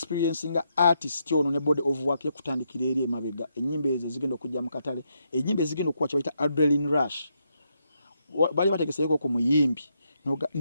nga artist ono ne body of work yakutandikira eri emabega ennyimba ezo zigenda okujja mu katale ennyimba ezigenda okuwa kye bayita adrenaline rush bali bategeseeko ku muyimbi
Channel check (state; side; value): inverted; both; correlation -0.79